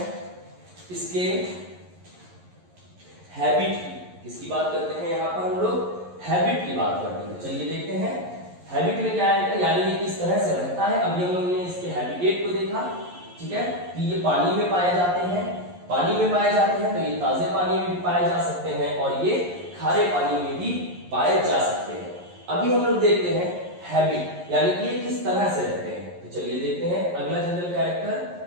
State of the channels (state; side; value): late; left; 11 ms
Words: इसके हैबिट की। किसकी बात करते हैं यहां पर? हम लोग हैबिट की बात करते हैं। चलिए देखते हैं हैबिट में क्या है, यानी ये किस तरह से रहता है। अभी हम लोगों ने इसके हैबिटेट को देखा, ठीक है, कि ये पानी में पाए जाते हैं। पानी में पाए जाते हैं तो ये ताजे पानी में भी पाए जा सकते हैं और ये खारे पानी में भी पाए जा सकते हैं। अभी हम लोग देखते हैं हैबिट, यानी कि ये किस तरह से रहते हैं। तो चलिए देखते हैं अगला general character